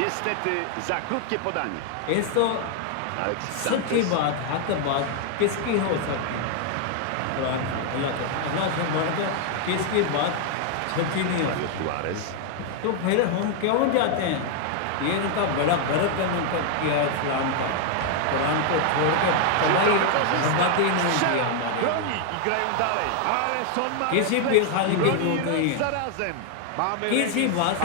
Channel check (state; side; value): different; both; correlation 0.00